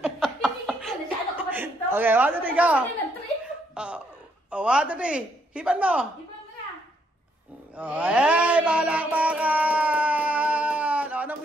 ko na siya. Ano ka ba dito? Okay, 1, 2, 3, go! Kasi ng trip. 1, 2, 3. Hipan mo! Iba mo na. Hey, balakbakan!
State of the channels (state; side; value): normal; both; correlation 0.73